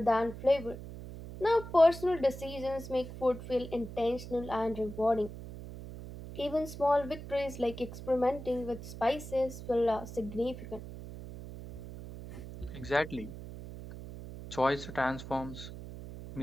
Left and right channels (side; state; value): right; noise; hum, 11 dB below the sound